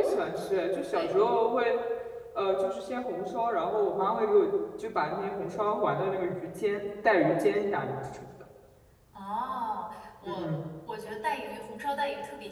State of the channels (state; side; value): identical; both; correlation 1.00